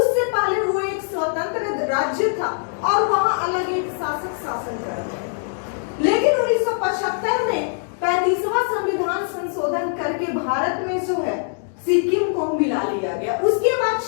पहले वो एक स्वतंत्र राज्य था और वहां अलग एक शासक शासन कर रहे थे। लेकिन 1975 में 35वां संविधान संशोधन करके भारत में जो है सिक्किम को मिला लिया गया। उसके बाद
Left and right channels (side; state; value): right; silent; 64 dB below the other